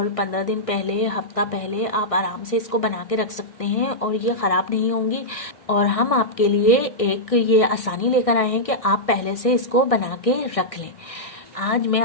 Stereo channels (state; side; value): late; right; 1.6 ms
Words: 15 दिन पहले, हफ्ता पहले आप आराम से इसको बना के रख सकते हैं और ये ख़राब नहीं होंगी। और हम आपके लिए एक ये आसानी लेकर आए हैं कि आप पहले से इसको बना के रख लें। आज मैं